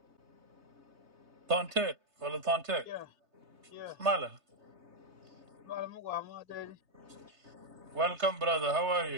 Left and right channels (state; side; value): late; left; 3.3 ms